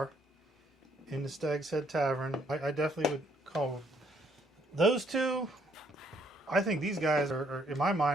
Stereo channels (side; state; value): both; normal; correlation 0.68